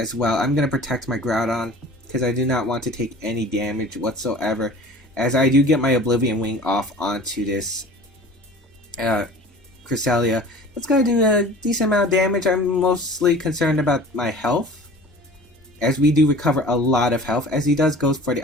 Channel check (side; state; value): both; normal; correlation 0.42